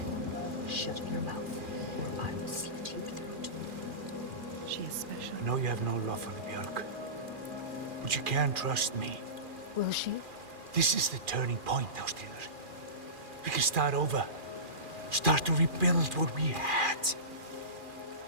Shut your mouth, or I will slit your throat. She is special. I know you have no love for the Björk, but you can trust me. Will she? This is the turning point, Ástríður. We can start over. Start to rebuild what we had.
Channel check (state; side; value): late; left; 2.4 ms